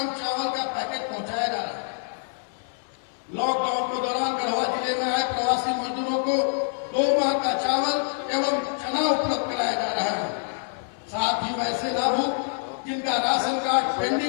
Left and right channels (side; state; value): right; silent; digital silence